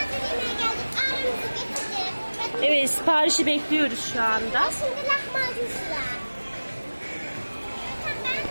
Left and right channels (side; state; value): both; inverted; correlation -1.00